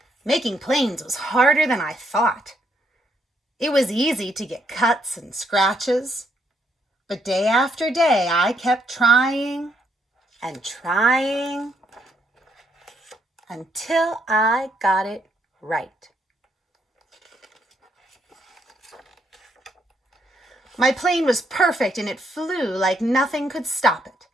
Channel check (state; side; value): normal; both; correlation 0.74